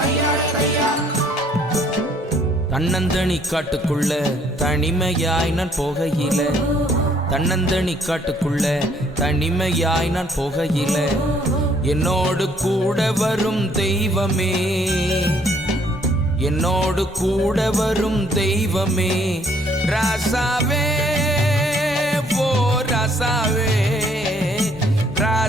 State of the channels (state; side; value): normal; both; correlation 0.64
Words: தையா. தன்னந்தனி காட்டுக்குள்ள தனிமையாய் நான் போகையில, தன்னந்தனி காட்டுக்குள்ள தனிமையாய் நான் போகையில, என்னோடு கூட வரும் தெய்வமே, என்னோடு கூட வரும் தெய்வமே, ராசாவே ஓ ராசாவே,